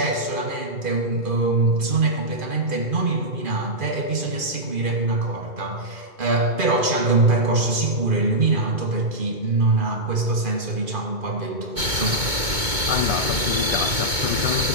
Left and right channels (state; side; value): late; left; 2.2 ms